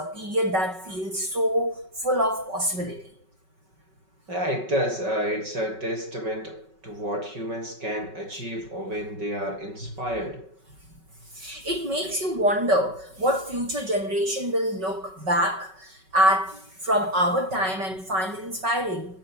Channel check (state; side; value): late; left; 5.3 ms